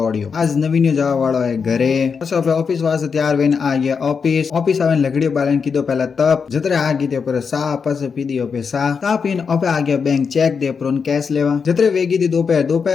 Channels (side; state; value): right; quieter; 5.8 dB